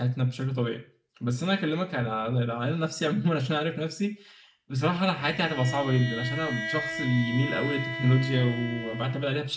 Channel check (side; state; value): both; identical; correlation 1.00